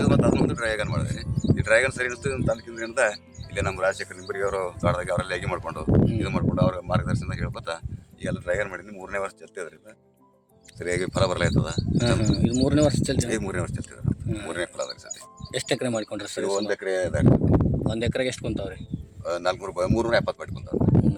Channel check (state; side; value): identical; both; correlation 1.00